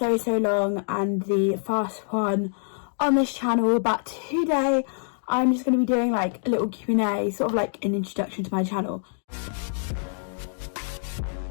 long, and the first one on this channel. But today I'm just going to be doing like a little Q&A, sort of like an introduction to my channel.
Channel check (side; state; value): right; silent; digital silence